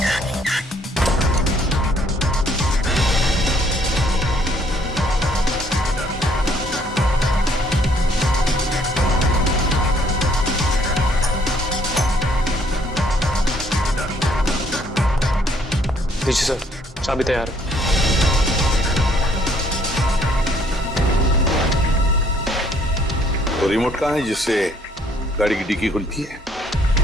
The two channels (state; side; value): normal; both; correlation 0.64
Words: जी सर, चाबी तैयार है। तो रिमोट कहाँ है जिससे गाड़ी की डिक्की खुलती है?